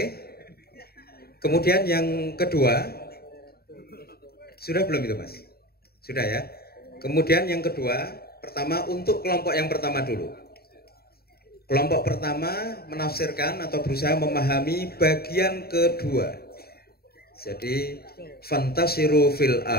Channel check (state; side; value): late; right; 0.45 ms